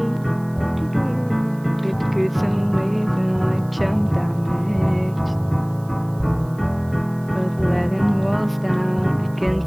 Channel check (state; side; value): noise; right; hiss, 27 dB below the sound